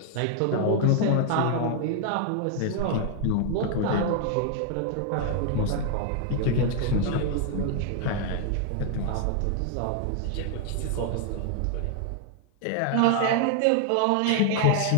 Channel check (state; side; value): different; both; correlation 0.00